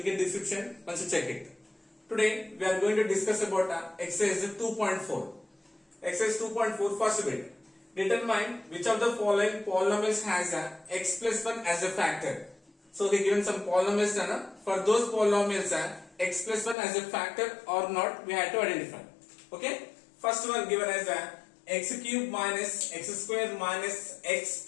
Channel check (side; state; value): right; drops out; at 16.8 s